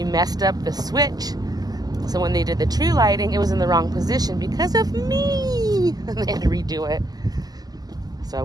messed up the switch. So when they did the tree lighting, it was in the wrong position because of me. They had to redo it. So I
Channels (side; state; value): left; late; 0.19 ms